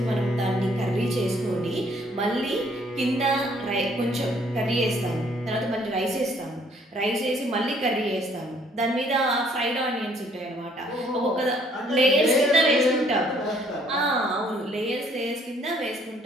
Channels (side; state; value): both; normal; correlation 0.63